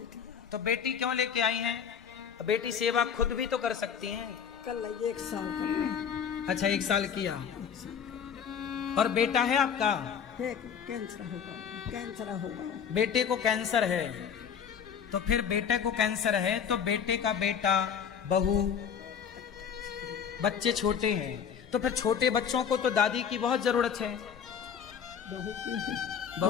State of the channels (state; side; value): quieter; right; 7.5 dB